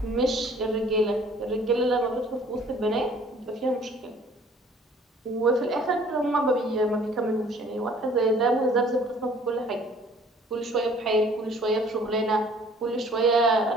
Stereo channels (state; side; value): normal; both; correlation 0.54